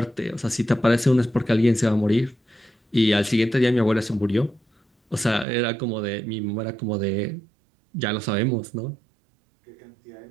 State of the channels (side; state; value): left; drops out; at 5.5 s